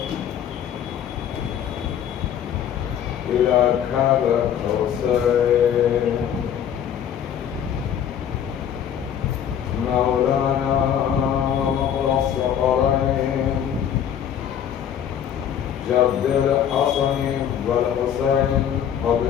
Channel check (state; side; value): quieter; right; 9.1 dB